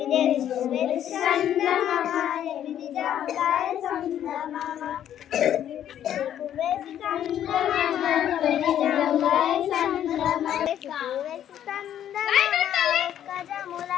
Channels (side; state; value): right; quieter; 10.6 dB